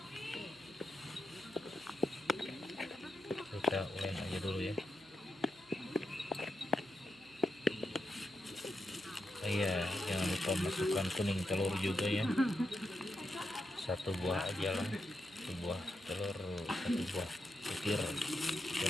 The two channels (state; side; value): noise; right; hum, 25 dB below the sound